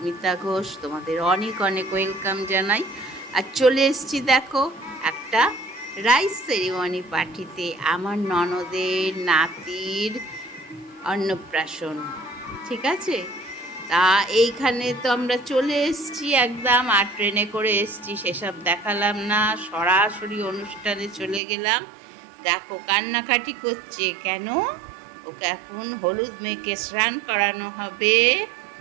Ghosh, তোমাদের অনেক অনেক ওয়েলকাম জানাই। আর চলে এসেছি দেখো একটা রাইস সেরিমনি পার্টিতে, আমার ননদের নাতির অন্নপ্রাশন। ঠিক আছে, তা এইখানে তো আমরা চলে এসেছি একদম, আর ট্রেনে করে এসেছি সেসব দেখালাম না, সরাসরি অনুষ্ঠানে চলে গেলাম। দেখো কান্নাকাটি করছে কেন, ওকে এখন হলুদ মেখে স্নান করানো হবে।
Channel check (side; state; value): left; drops out; at 21.4 s